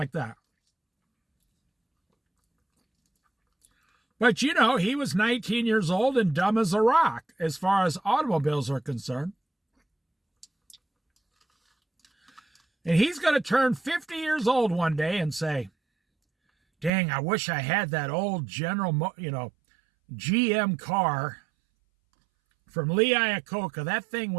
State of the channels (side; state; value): left; drops out; at 16.9 s